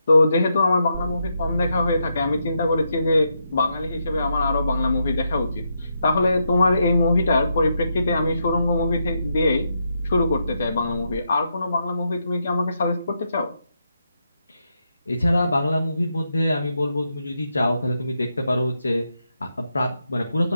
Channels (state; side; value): inverted; both; correlation -0.82